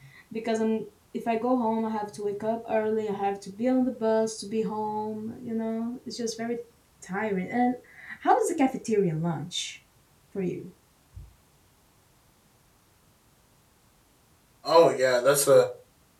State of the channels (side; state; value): both; identical; correlation 1.00